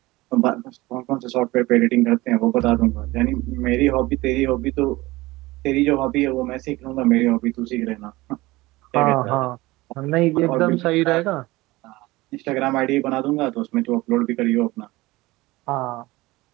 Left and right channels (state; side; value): quieter; left; 20.1 dB